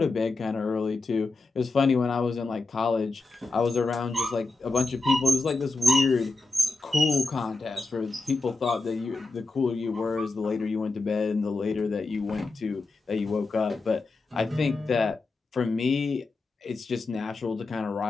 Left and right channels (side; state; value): right; quieter; 3.5 dB